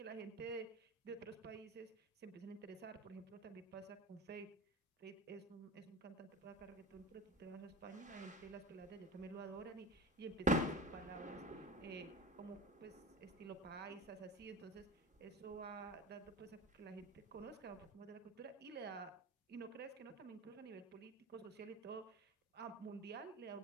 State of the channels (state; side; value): normal; both; correlation 0.31